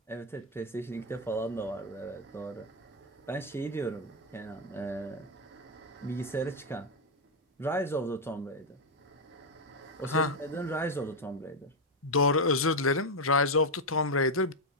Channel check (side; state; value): both; normal; correlation 0.03